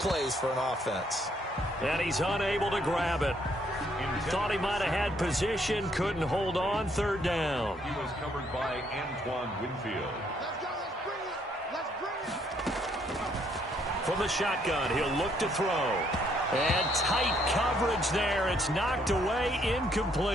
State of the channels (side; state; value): both; normal; correlation 0.69